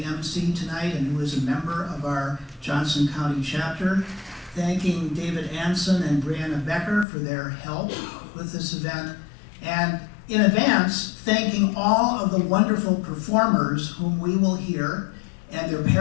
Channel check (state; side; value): drops out; right; at 7.1 s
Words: MC tonight and who is a member of our Johnson County Chapter, thanking David Anson and Brianna Becker for their help with this event, and in advance, thanking all of the wonderful performers whom we will hear, and their